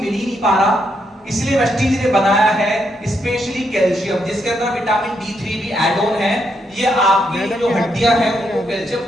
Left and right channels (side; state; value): both; normal; correlation 0.78